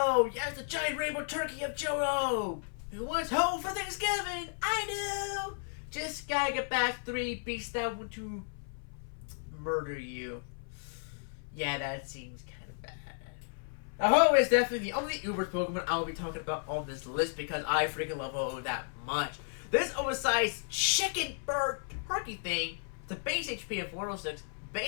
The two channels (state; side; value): silent; right; 55 dB below the other